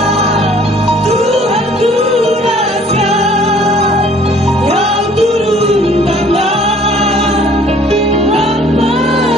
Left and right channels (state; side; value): normal; both; correlation 0.56